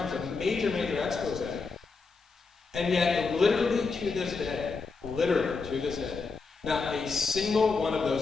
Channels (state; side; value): quieter; right; 4.4 dB